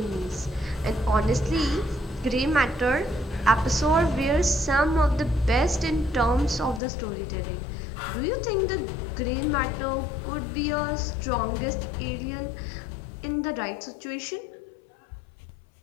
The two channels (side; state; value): right; drops out; at 6.8 s